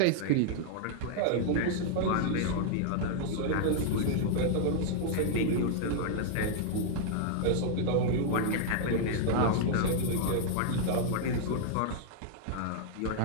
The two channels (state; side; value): different; both; correlation -0.01